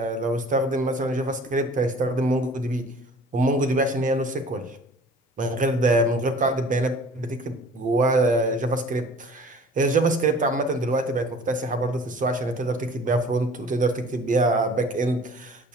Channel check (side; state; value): both; normal; correlation 0.48